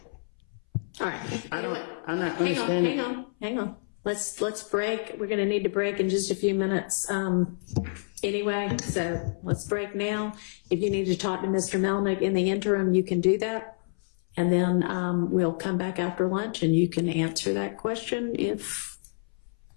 All right. I'm not understanding. Hang on. Let's break. We're going to need to break in just a few minutes anyway. So let's break now. If you need to talk to Mr. Melnick in the interim, you can do that. And then we'll come back after lunch and you can answer that question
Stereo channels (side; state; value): right; silent; 59 dB below the other